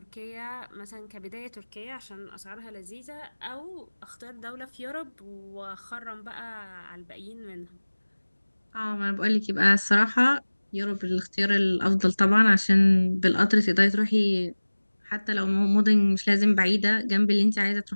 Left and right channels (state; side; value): inverted; both; correlation -1.00